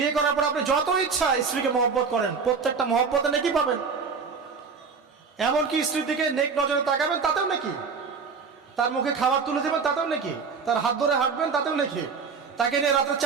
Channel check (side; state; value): left; quieter; 5.3 dB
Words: করার পর আপনি যত ইচ্ছা স্ত্রীকে মহব্বত করেন, প্রত্যেকটা মহব্বতে নেকি পাবেন। এমনকি স্ত্রীর দিকে নেক নজরে তাকাবেন, তাতেও নাকি। তার মুখে খাবার তুলে দেবেন, তাতেও নাকি। তার হাত ধরে হাঁটবেন, তাতেও নাকি। তাকে নিয়ে রাতে